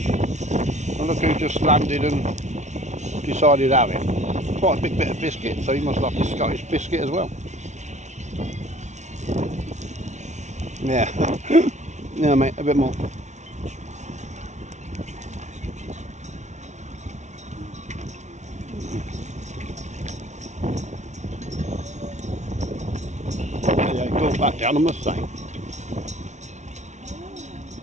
And look who just landed and decided to have it. Quite a big bit of biscuit, so he must like his Scottish biscuit as well. Yeah, yeah, mate, a bit more. Yeah, go back down, I must say.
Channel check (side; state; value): left; late; 0.33 ms